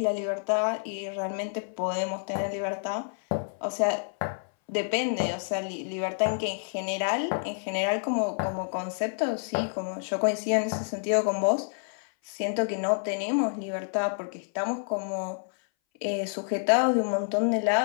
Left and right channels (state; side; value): silent; right; 59 dB below the other